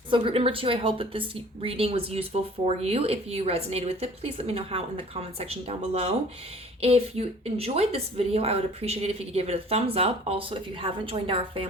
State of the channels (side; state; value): both; normal; correlation 0.50